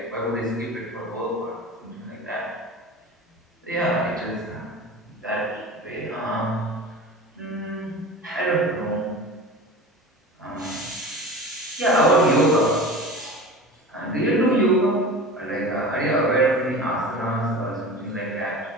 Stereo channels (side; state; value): both; normal; correlation 0.34